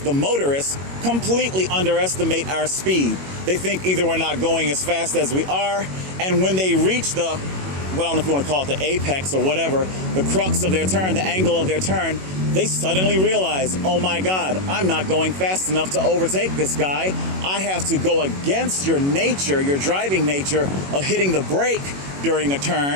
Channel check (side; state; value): left; late; 21 ms